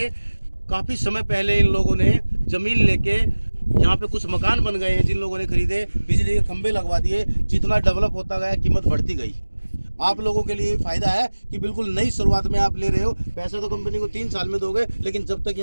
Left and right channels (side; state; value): both; inverted; correlation -1.00